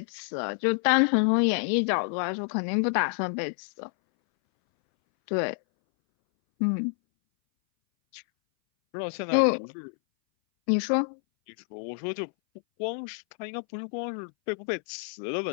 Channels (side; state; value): right; silent; 59 dB below the other